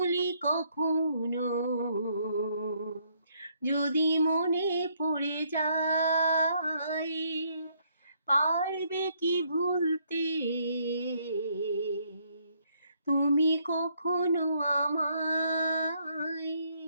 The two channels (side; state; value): both; inverted; correlation -0.70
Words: কখনো যদি মনে পড়ে যায়, পারবে কি ভুলতে তুমি কখনো আমায়?